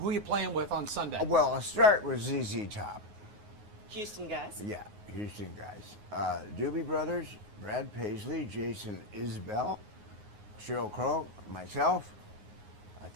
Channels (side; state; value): left; late; 9.5 ms